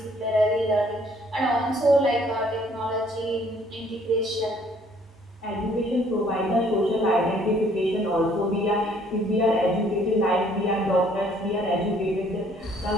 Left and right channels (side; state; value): both; normal; correlation 0.61